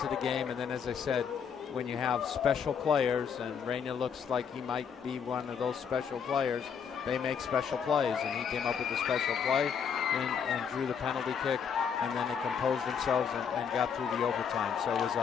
the game, and then, as I said, when you have special players, and Reyna looks like he might be one of those special players, they make special plays, and he came up with a special play and drew the penalty kick, and then they composed themselves and got through the overtime. So it was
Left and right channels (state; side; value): quieter; right; 7.1 dB